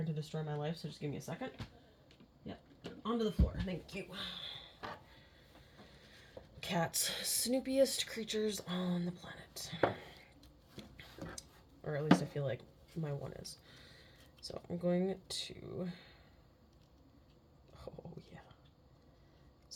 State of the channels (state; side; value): identical; both; correlation 1.00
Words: to destroy my life, so just give me a second. Yep, onto the floor. Thank you. Cats, snoopiest creatures on the planet. Or at least I feel like my one is. So I'm going to... Oh, yeah.